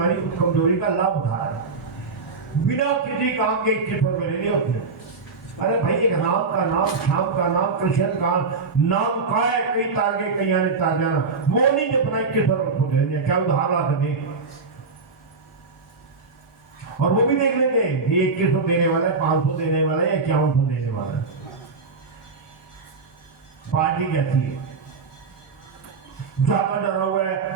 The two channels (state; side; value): quieter; left; 4.3 dB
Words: उस कमजोरी का लाभ उठा रहा है बिना किसी काम के 2100 रुपए ले लिए उसने। अरे भाई एक राम का नाम, श्याम का नाम, कृष्ण का नाम का है, कई तार के कई आने तार जाना, वो नहीं जपना 2100 रुपए दे, क्या उधार ला सके। और वो भी देख लेंगे ये 2100 देने वाला है, 500 देने वाला है या 5100 देने वाला है। पार्टी कैसी है? ज्यादा डरा हुआ है